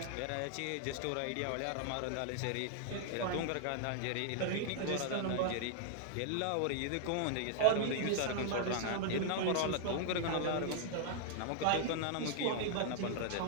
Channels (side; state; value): both; different; correlation -0.01